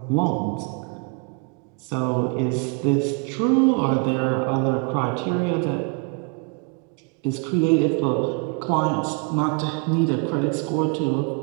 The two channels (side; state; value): left; quieter; 34.2 dB